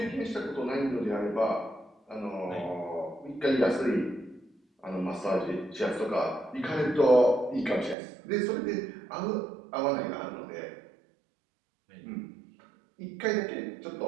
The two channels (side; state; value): left; drops out; at 8.0 s